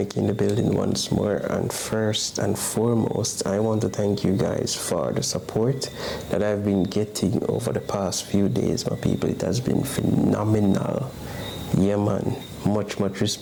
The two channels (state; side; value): identical; both; correlation 1.00